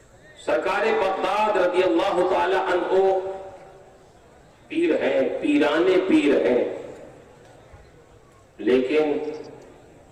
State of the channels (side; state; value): both; identical; correlation 1.00